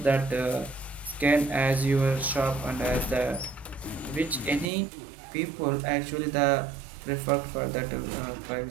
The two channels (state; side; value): drops out; left; at 4.7 s